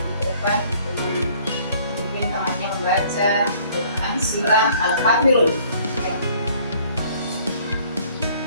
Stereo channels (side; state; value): both; inverted; correlation -0.58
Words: depan mungkin temannya membaca Quran surah Al-Kafirun. Oke.